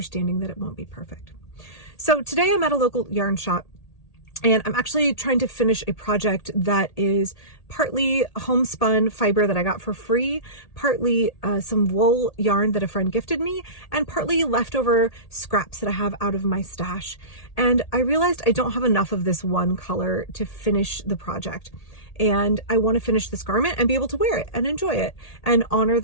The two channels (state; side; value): late; right; 1.8 ms